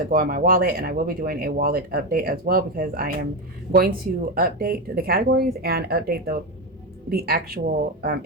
go in my wallet, and I will be doing a wallet update as well, because I am going to update the categories and update the actual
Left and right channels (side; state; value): both; normal; correlation 0.13